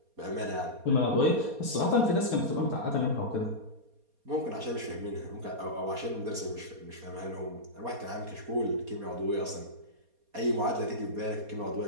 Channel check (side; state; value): left; late; 4.2 ms